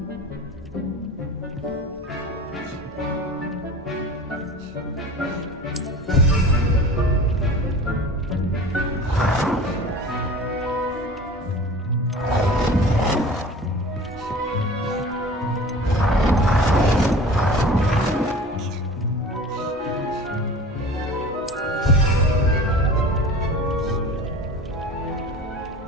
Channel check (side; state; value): both; normal; correlation 0.39